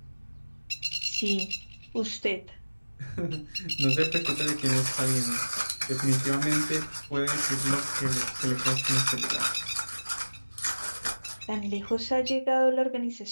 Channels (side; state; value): both; inverted; correlation -1.00